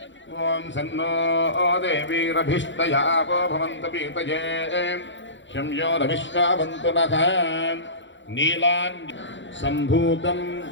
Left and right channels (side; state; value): right; late; 0.54 ms